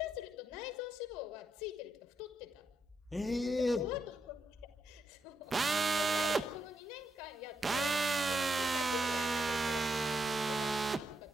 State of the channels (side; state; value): both; normal; correlation 0.81